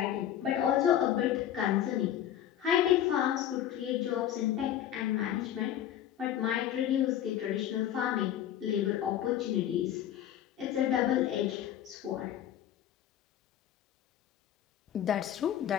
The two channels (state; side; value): quieter; right; 11.1 dB